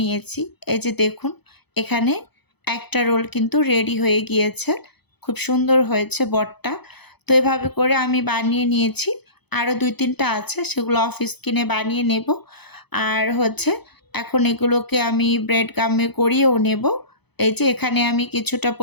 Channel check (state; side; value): late; right; 0.98 ms